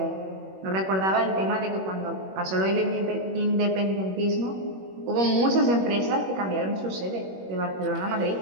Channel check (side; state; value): left; late; 21 ms